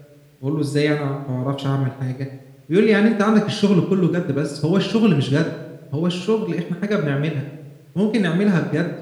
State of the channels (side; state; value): both; identical; correlation 1.00